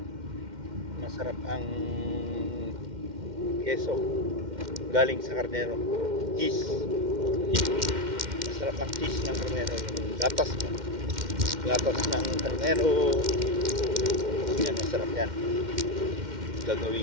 masarap ang keso galing sa karnero. Cheese. Masarap ang cheese ng karnero. Yung gatas ng karnero. Yan, masarap yan.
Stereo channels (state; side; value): late; left; 2.1 ms